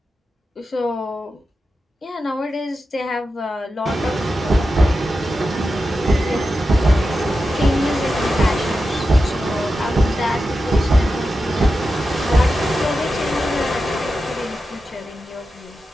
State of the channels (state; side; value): normal; both; correlation 0.91